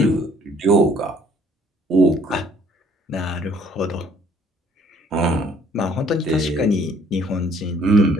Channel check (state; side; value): normal; both; correlation 0.60